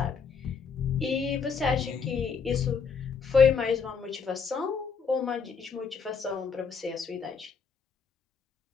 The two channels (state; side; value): quieter; right; 5.6 dB